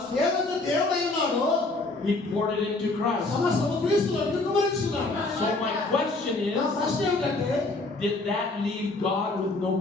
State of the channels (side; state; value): right; quieter; 3.1 dB